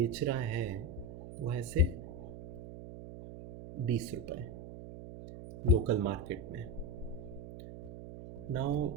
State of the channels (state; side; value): noise; right; hum, 12 dB below the sound